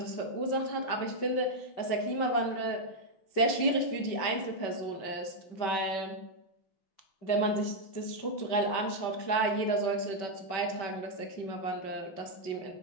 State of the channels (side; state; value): right; late; 5.2 ms